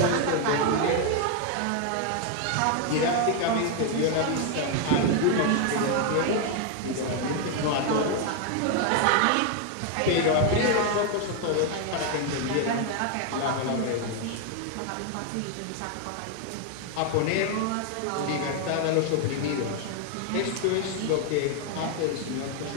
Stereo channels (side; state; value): both; different; correlation 0.01